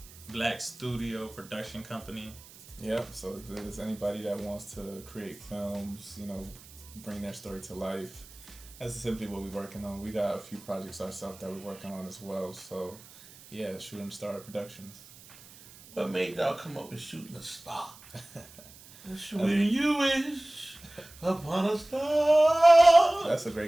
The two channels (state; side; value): noise; right; hiss, 21 dB below the sound